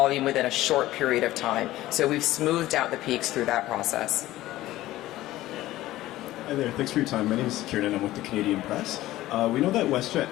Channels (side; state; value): right; quieter; 15.9 dB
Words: within a short period of time. So we've smoothed out the peaks through that process. Hi there, thanks for your time. My name is Kieran and I'm with the Canadian Press. We know that WestJet